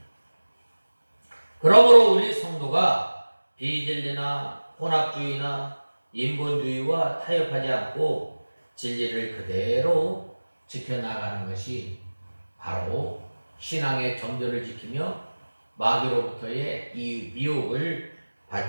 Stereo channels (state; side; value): inverted; both; correlation -1.00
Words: 그러므로 우리 성도가 비진리나 혼합주의나 인본주의와 타협하지 않고 진리를 그대로 지켜나가는 것이 바로 신앙의 정조를 지키며 마귀로부터의 이 미혹을